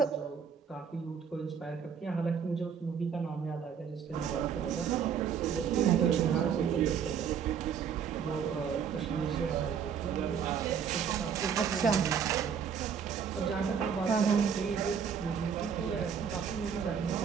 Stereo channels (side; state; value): left; quieter; 7.2 dB